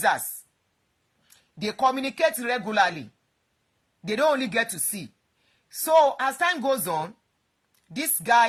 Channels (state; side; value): identical; both; correlation 1.00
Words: They communicate regularly. They don't only get to see. So as time goes on, this